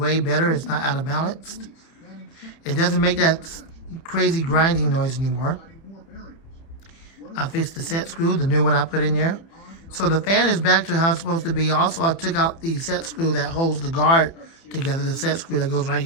better. It's not out of balance. It doesn't make that crazy grinding noise anymore. I fixed the set screw, the new one I put in there. So the fan is back to how it's supposed to be. Also, I took out the set screw that holds the guard together, the set screw that goes right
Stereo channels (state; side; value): late; right; 30 ms